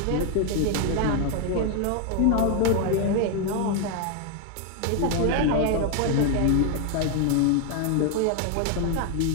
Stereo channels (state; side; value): different; both; correlation 0.01